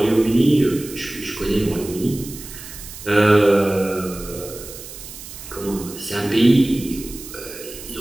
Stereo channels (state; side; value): noise; right; hiss, 14 dB below the sound